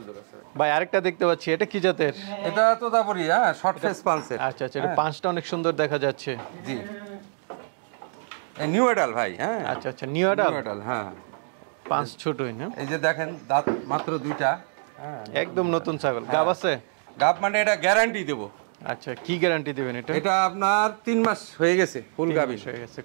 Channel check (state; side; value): silent; left; digital silence